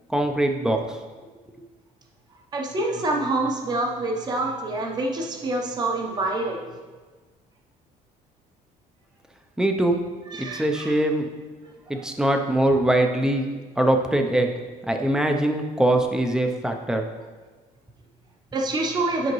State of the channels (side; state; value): both; normal; correlation 0.71